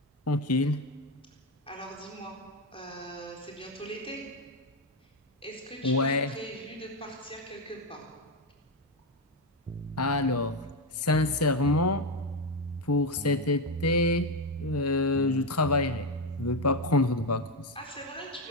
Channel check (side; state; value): both; normal; correlation 0.09